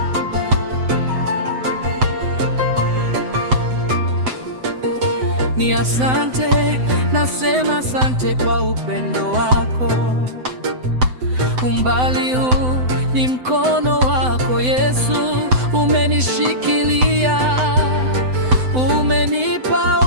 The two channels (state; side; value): late; left; 7.9 ms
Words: Ni asante, nasema asante kwa upendo wako. Umbali huu ni mkono wako Yesu, umenishikilia, umenipa